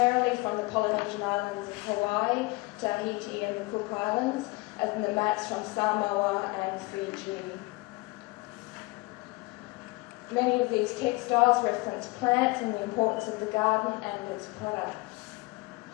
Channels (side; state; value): right; quieter; 24.3 dB